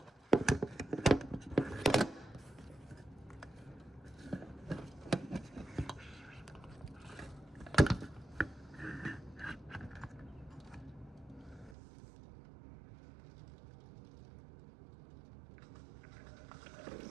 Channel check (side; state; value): left; drops out; at 11.8 s